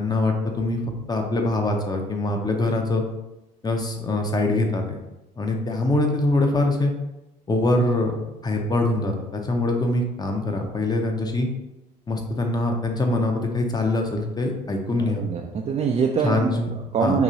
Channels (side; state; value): both; normal; correlation 0.63